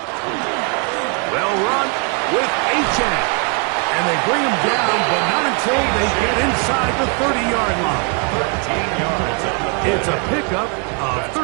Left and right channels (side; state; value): left; quieter; 36.8 dB